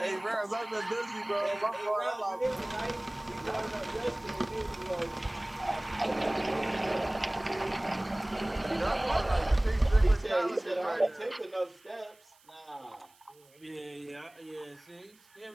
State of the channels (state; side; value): noise; right; hiss, 29 dB below the sound